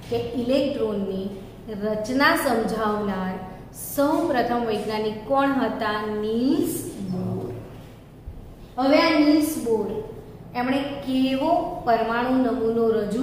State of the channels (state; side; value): identical; both; correlation 1.00